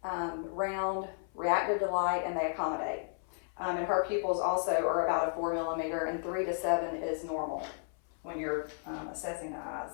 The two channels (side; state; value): right; silent; 55 dB below the other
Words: round, reactive to light, and they accommodate. And her pupils also are about a 4 millimeter, and 3 to 7 is normal when you're assessing the